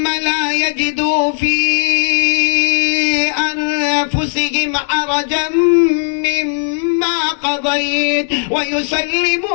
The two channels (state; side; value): silent; right; digital silence